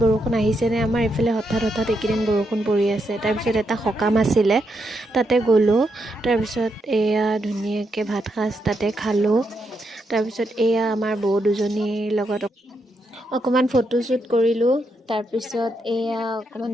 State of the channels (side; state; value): both; normal; correlation 0.81